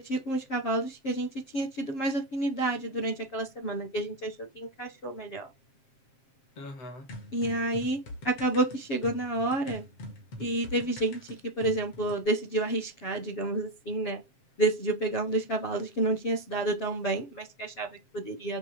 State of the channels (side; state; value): right; late; 7.5 ms